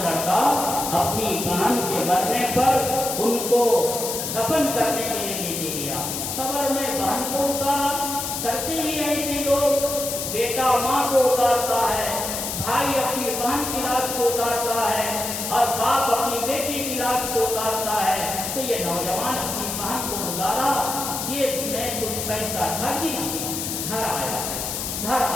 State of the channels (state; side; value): noise; left; hiss, 4 dB below the sound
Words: لڑکا اپنی بہن کے مرنے پر ان کو دفن کرنے کے لیے لے کے گیا. قبر میں بہن کو اتارا, کرتے ہی ایسے لوگ, بیٹا ماں کو اتارتا ہے, بھائی اپنی بہن کی لاش کو اتارتا ہے اور باپ اپنی بیٹی کی لاش کو اتارتا ہے. تو یہ نوجوان اپنی بہن کو گزارا, جیب میں کچھ پیسہ تھا, گر گیا, گھر آیا. گھر